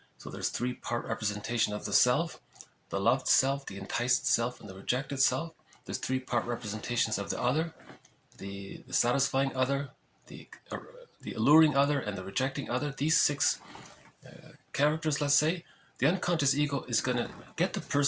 So there's 3-part representation of the self, the loved self, the enticed self, and the rejected self. There's 3-part representations of the other, the satisfying other, the alluring other, and the rejecting other. These 6 characters, let's say, the unconscious ego is going to get the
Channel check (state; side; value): identical; both; correlation 1.00